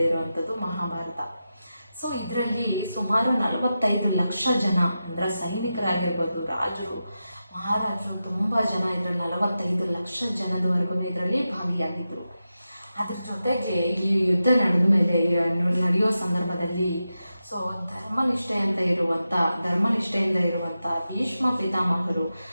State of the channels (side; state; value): both; inverted; correlation -0.91